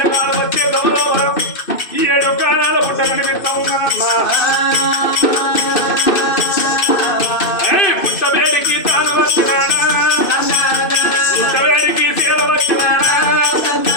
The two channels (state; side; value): late; right; 2.6 ms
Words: వచ్చే గౌరవం ఈ 7 కాలాల పుట్ట కనిపిస్తా ఉన్నానమ్మా పుట్టవేడికి తాను వచ్చినాడా పుట్టవేడికి సీల వచ్చినాడా